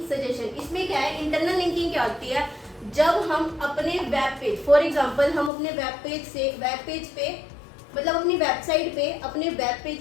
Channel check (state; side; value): drops out; right; at 5.5 s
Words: सजेशन। इसमें क्या है, इंटरनल लिंकिंग क्या होती है, जब हम अपने वेब पेज, फॉर एग्जांपल हम अपने वेब पेज पे मतलब अपनी वेबसाइट पे अपने वेब